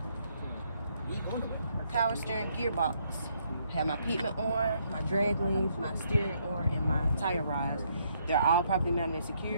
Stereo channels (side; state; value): both; inverted; correlation -0.72